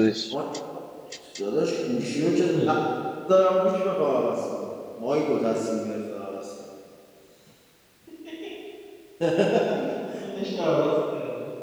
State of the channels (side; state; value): both; identical; correlation 1.00